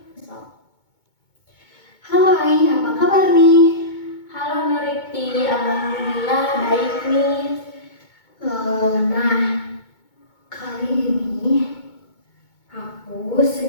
Halo Ai, apa kabar nih? Halo Nurifti, alhamdulillah baik nih. Nah, kali ini aku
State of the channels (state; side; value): late; right; 2.2 ms